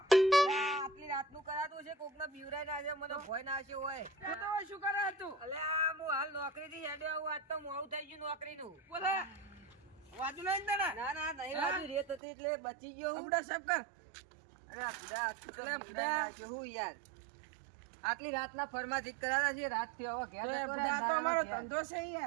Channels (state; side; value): drops out; left; at 12.2 s